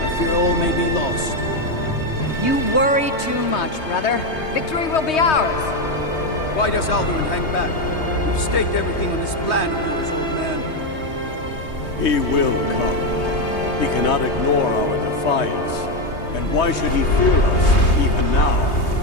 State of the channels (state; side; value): late; right; 3.2 ms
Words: fear all may be lost. You worry too much, brother. Victory will be ours. Why does Alduin hang back? We've staked everything on this plan of yours, old man. He will come. He cannot ignore our defiance. And why should he fear us, even now?